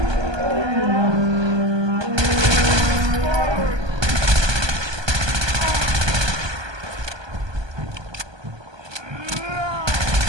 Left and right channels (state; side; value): late; left; 1.2 ms